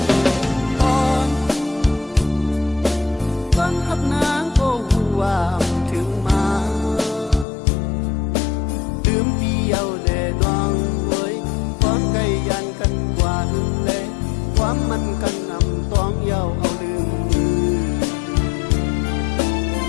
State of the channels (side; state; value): right; drops out; at 7.5 s